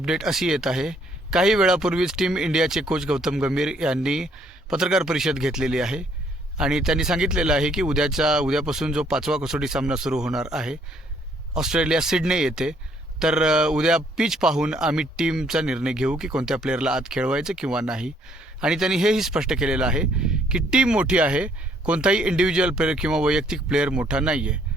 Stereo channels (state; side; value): normal; both; correlation 0.66